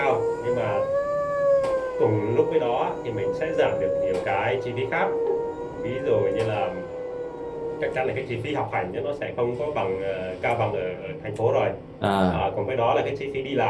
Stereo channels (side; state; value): both; identical; correlation 1.00